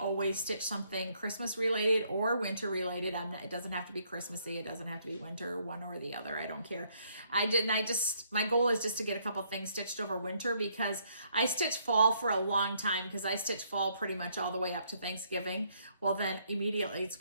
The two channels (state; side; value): inverted; both; correlation -0.69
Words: stitch something Christmas related or winter related. It doesn't have to be Christmassy. It doesn't have to be winter, one or the other. I don't care. My goal is just to get a couple things stitched over winter, because I stitch fall for a long time, because I stitch fall pretty much all the way up to Thanksgiving. Well, then immediately it's